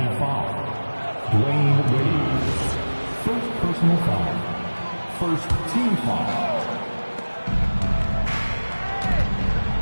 foul. Dwayne Wade. First personal foul. First team foul.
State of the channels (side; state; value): both; inverted; correlation -1.00